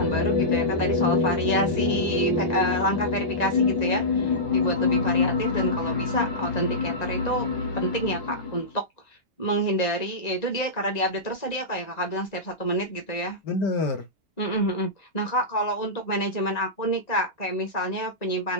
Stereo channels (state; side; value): late; right; 1.9 ms